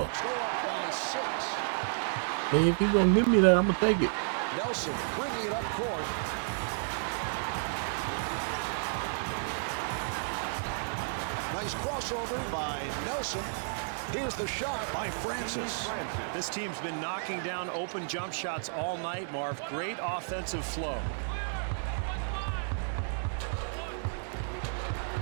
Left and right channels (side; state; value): left; silent; digital silence